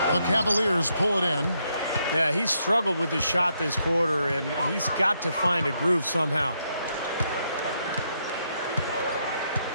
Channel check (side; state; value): both; inverted; correlation -0.77